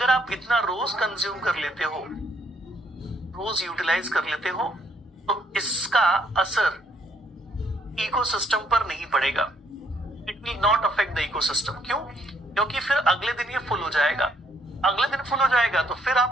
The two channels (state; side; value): normal; both; correlation 0.70